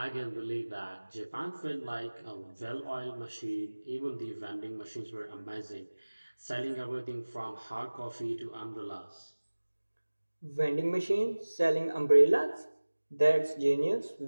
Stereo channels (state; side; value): inverted; both; correlation -1.00